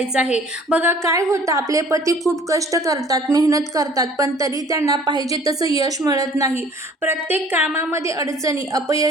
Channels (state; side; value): normal; both; correlation 0.52